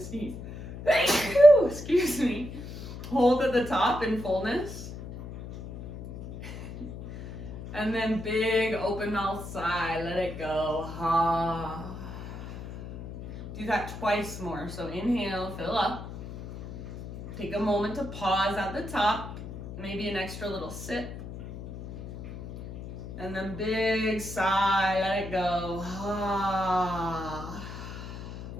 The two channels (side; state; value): left; noise; hum, 11 dB below the sound